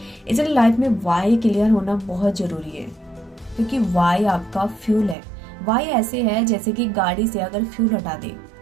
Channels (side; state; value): left; drops out; at 5.2 s